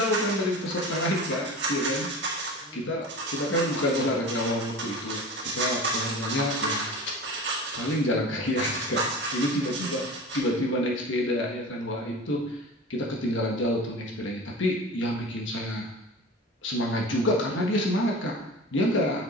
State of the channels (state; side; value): normal; both; correlation 0.34